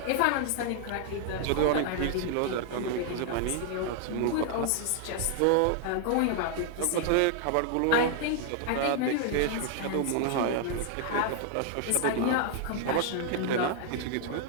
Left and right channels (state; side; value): different; both; correlation 0.00